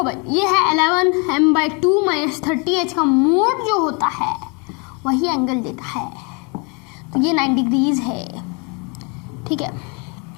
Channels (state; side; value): quieter; right; 32.7 dB